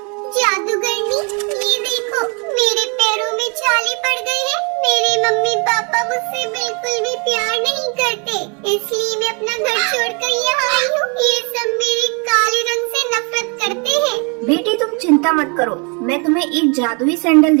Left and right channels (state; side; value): quieter; left; 34.7 dB